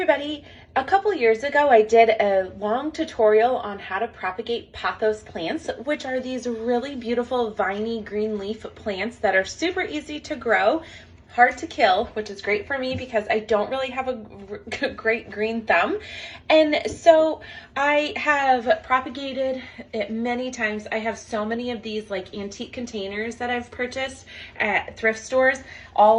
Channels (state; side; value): identical; both; correlation 1.00